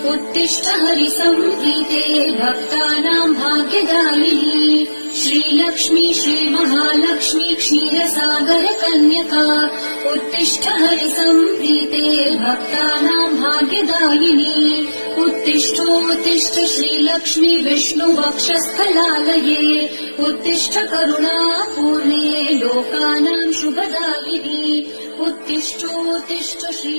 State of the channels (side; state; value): both; inverted; correlation -1.00